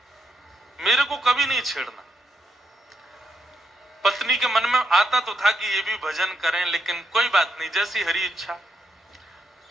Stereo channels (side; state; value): both; normal; correlation 0.80